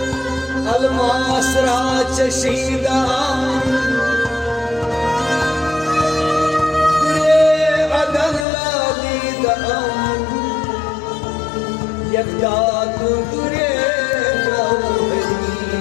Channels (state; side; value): drops out; right; at 8.5 s